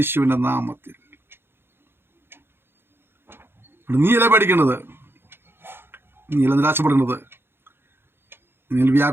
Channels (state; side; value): late; left; 0.11 ms